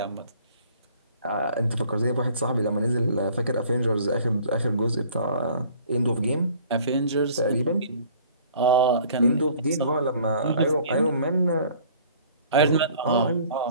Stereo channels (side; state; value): both; inverted; correlation -0.53